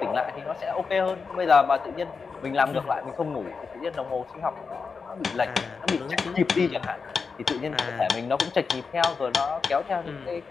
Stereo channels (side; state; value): right; quieter; 5.1 dB